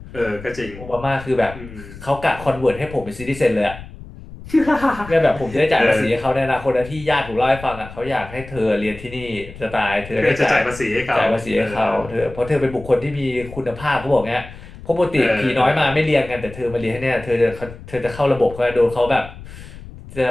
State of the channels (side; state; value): left; noise; rumble, 15 dB below the sound